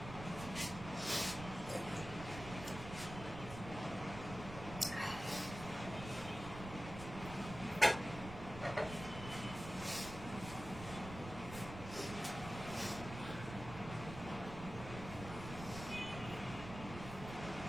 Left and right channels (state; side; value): noise; right; rumble, 10 dB below the sound